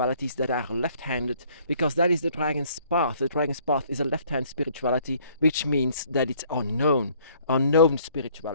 that are left-handed, because that is the dragon's path. The dragon's path is a left-hand spirituality, which means that it's unknown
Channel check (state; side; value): inverted; both; correlation -0.60